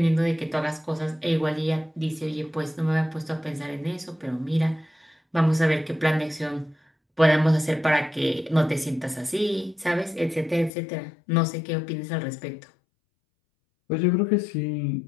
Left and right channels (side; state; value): right; drops out; at 10.7 s